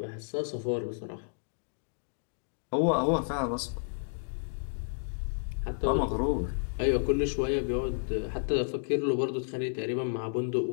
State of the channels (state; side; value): silent; right; digital silence